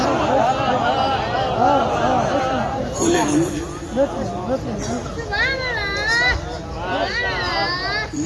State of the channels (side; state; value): both; identical; correlation 1.00